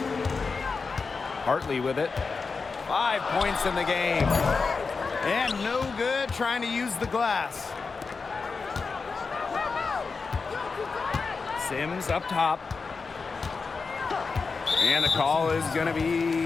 Hartley with it. 5 points in the game. And no good trying to use the glass. Sims up top. And the call is going to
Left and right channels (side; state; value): right; quieter; 4.7 dB